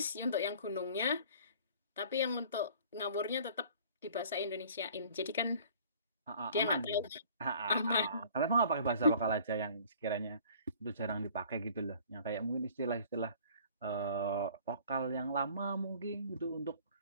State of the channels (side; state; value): both; inverted; correlation -0.51